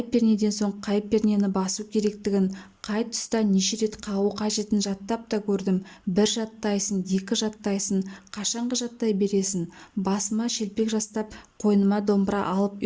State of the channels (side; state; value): both; identical; correlation 1.00